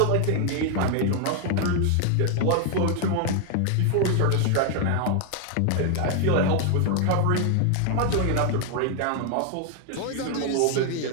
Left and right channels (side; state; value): both; different; correlation 0.00